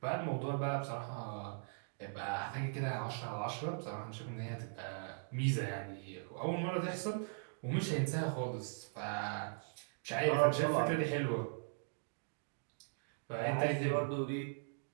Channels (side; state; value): left; silent; digital silence